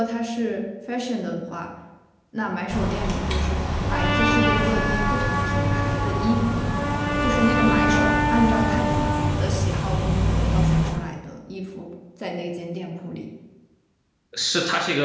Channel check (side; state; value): both; identical; correlation 1.00